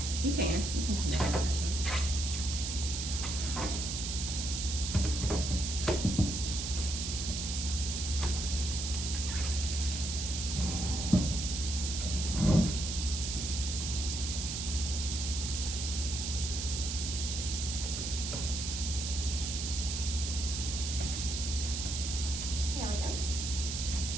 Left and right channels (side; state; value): right; noise; hiss, 3 dB below the sound